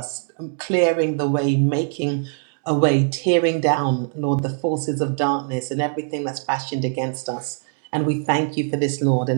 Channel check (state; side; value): silent; left; 56 dB below the other